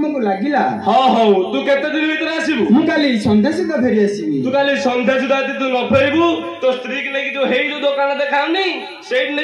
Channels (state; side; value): identical; both; correlation 1.00